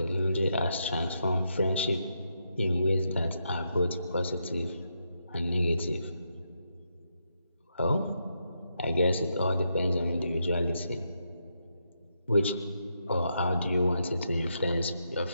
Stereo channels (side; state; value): both; inverted; correlation -0.82